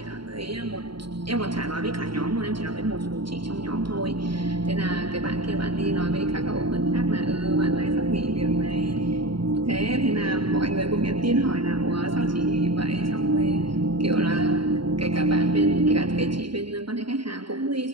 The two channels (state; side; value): late; left; 0.73 ms